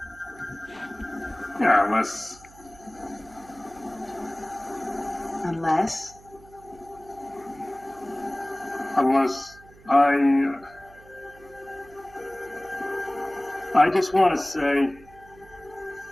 Yeah, unless I just want to say,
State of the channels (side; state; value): right; noise; hum, 23 dB below the sound